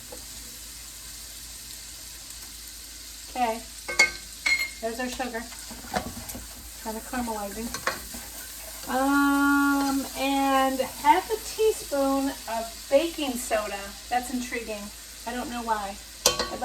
Okay. There's our sugar. Kind of caramelizing. And half a teaspoon of baking soda. That's intriguing. I don't know why. I'd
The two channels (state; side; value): identical; both; correlation 1.00